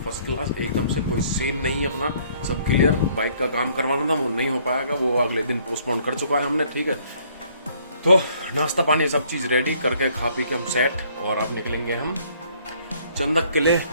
फर्स्ट क्लास एकदम से। कोई सीन नहीं है, अपना सब क्लियर। बाइक का काम करवाना था, वो नहीं हो पाएगा, वो अगले दिन पोस्टपोन कर चुका है हमने, ठीक है। तो नाश्ता पानी सब चीज़ रेडी करके खा पी के हम सेट, और अब निकलेंगे हम चंदक के लिए।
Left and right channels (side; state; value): both; inverted; correlation -0.62